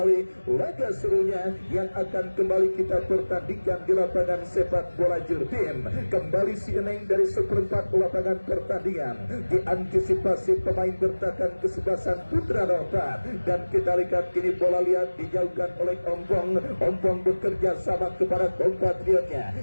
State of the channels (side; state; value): both; inverted; correlation -1.00